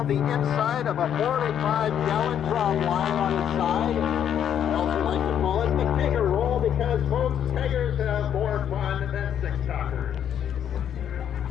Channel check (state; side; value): quieter; right; 9.3 dB